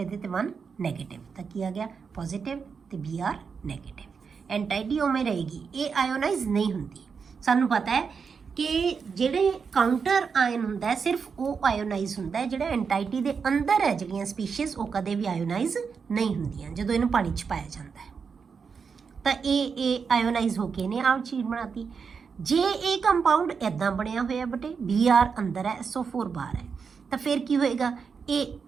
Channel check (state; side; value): quieter; left; 5.8 dB